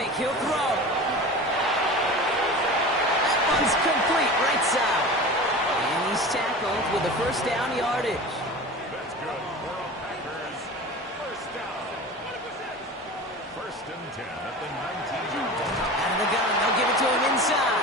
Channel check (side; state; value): both; normal; correlation 0.33